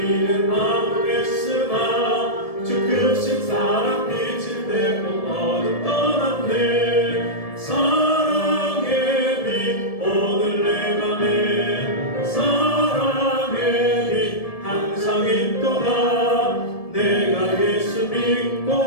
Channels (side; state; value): right; late; 1.7 ms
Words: 아무랬으나 주 크신 사랑 빛을 내고 어둠 떠났네. 사랑의 빛 오늘 내 맘에 사랑의 빛 항상 있도다. 내가 예수